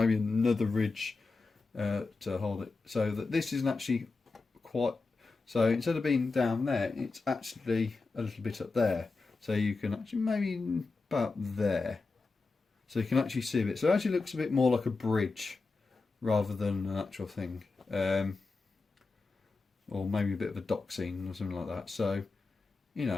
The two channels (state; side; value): quieter; right; 3.9 dB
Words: another ridge to hold it. So that this isn't actually quite... So instead of being down there, it's actually a little bit up there. So you can actually maybe about there. So you can actually see a bit. So it actually looks a bit more like a bridge rather than an actual thing. Or maybe a bit of a dock scene or something like that. So, you